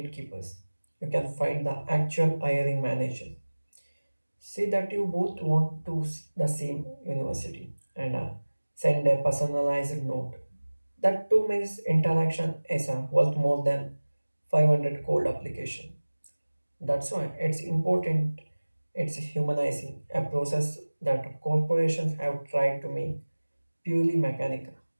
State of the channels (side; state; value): both; inverted; correlation -1.00